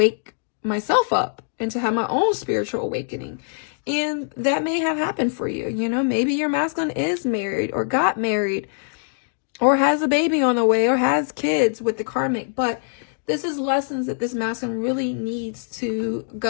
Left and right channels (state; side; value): silent; right; digital silence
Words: myself up and to have my own spiritual awakening. And that may have happened for you. You know, maybe your masculine is married or got married or has a baby on the way or has kids with the karmic. But this is lessons that this masculine really needs to